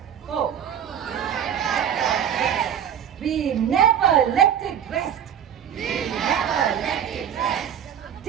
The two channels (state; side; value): quieter; left; 9.0 dB